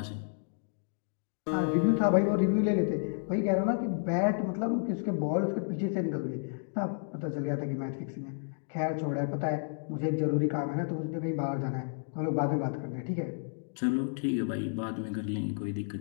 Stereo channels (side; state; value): right; silent; digital silence